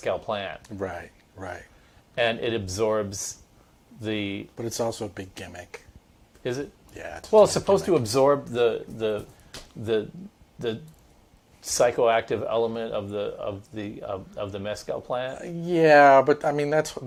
plant, Right, right. and it absorbs the. But it's also a big gimmick. Is it? Yeah. Well, it's supposed to absorb the the psychoactive element of the mezcal plant. Yeah, but I mean that's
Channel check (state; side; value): identical; both; correlation 1.00